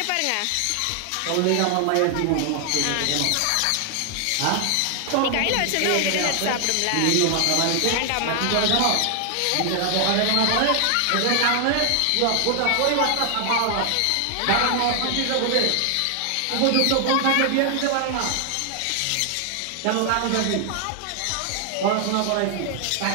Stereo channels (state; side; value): different; both; correlation 0.00